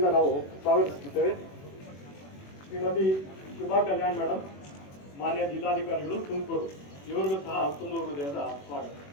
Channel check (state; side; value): late; right; 21 ms